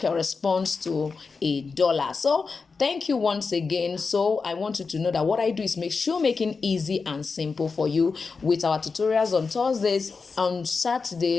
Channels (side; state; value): right; quieter; 4.7 dB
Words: to $1. So thank you once again. So I want you to know that what I do is make shoemaking easy and simple for you with our tutorials on Thursdays, on